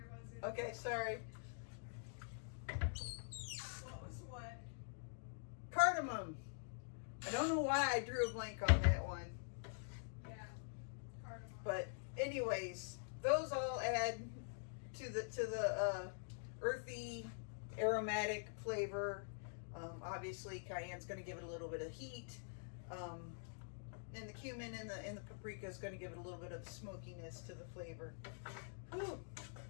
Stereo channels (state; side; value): silent; right; digital silence